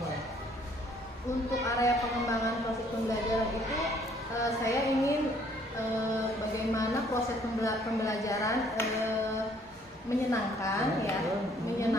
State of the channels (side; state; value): both; normal; correlation 0.62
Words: Untuk area pengembangan proses pembelajaran itu saya ingin bagaimana proses pembelajaran menyenangkan ya,